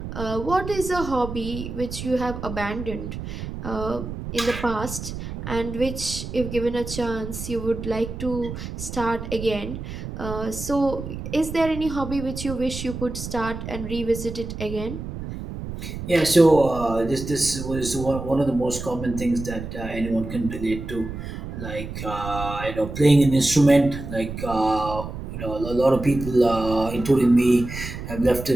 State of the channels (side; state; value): right; noise; rumble, 8 dB below the sound